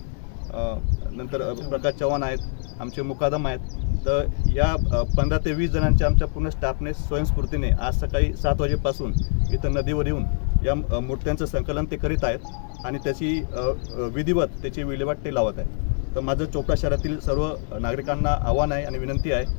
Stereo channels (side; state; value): right; silent; 62 dB below the other